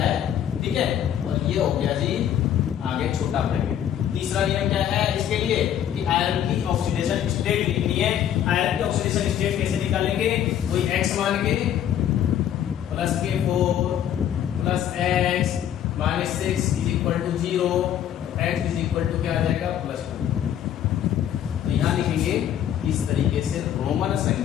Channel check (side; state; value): right; quieter; 10.3 dB